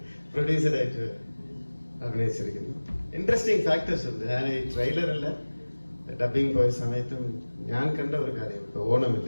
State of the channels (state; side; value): inverted; both; correlation -1.00